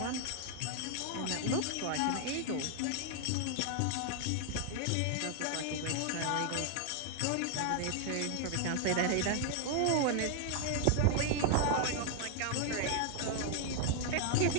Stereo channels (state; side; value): different; both; correlation 0.00